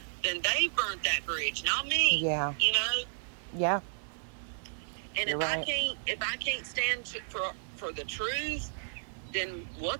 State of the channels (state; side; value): silent; left; digital silence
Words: then they burnt that bridge, not me. Yeah. You know? Yeah. And if I can't stand for the truth, then